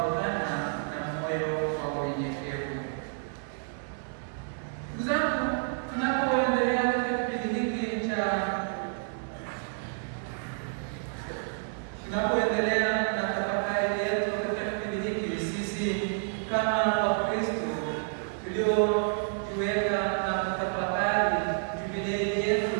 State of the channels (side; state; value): left; silent; 58 dB below the other